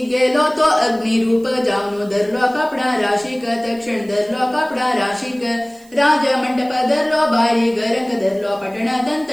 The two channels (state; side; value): noise; right; hiss, 27 dB below the sound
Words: गेलो तो अग्निरूप जाऊन धरलो कपडा राशिक तक्षण धरलो कपडा राशिक राज मंडप धरलो बारी गरंग धरलो पटण